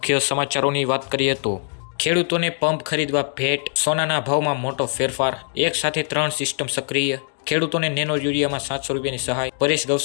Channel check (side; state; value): right; silent; 64 dB below the other